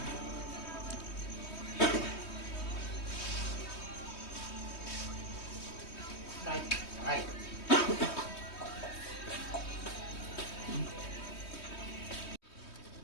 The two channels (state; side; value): late; right; 3.2 ms